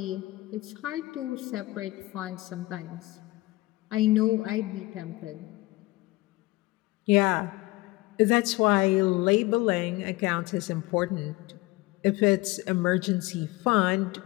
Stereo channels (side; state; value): right; quieter; 20.8 dB